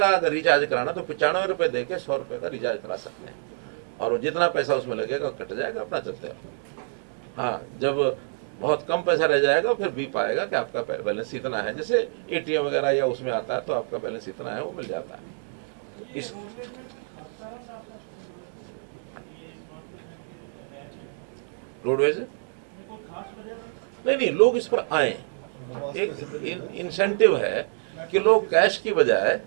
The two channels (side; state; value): left; silent; digital silence